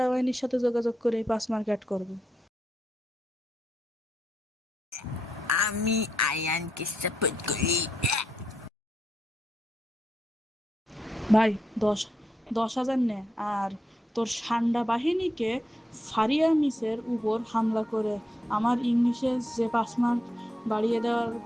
বাহিনীর সাথে যোগাযোগ করে 5 মার্ক অ্যাড করবো। আমি আয়ানকে সাপোর্ট করি। ভাই, 10,000 নে, আর তোর সান্ডা বাহিনীকে ফারিয়া মিসের উপর হামলা করে আমার ইংলিশে যে 5 মার্ক বাড়িয়ে দেওয়ার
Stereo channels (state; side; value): normal; both; correlation 0.82